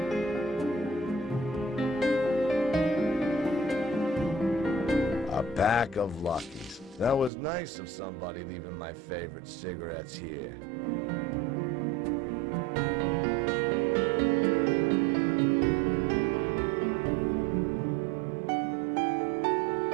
A pack of Luckies. That was nice of somebody leaving my favorite cigarettes here.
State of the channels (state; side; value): drops out; left; at 7.3 s